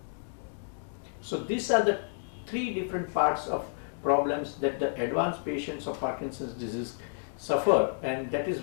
So these are the three different parts of problems that the advanced patients of Parkinson's disease suffer, and that is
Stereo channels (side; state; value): right; silent; digital silence